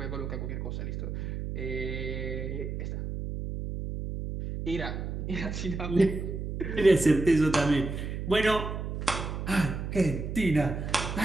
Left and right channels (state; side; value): noise; right; hum, 5 dB below the sound